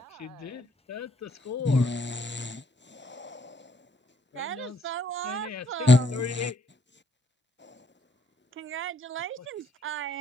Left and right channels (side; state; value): both; normal; correlation 0.69